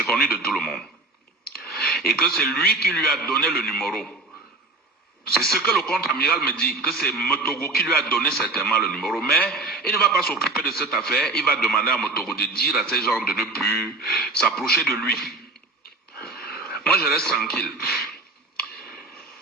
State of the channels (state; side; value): quieter; left; 3.2 dB